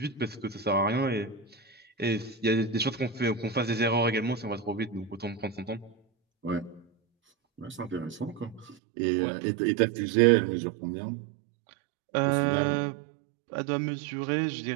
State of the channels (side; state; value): left; drops out; at 8.8 s